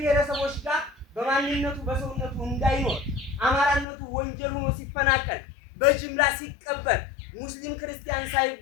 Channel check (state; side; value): drops out; right; at 3.9 s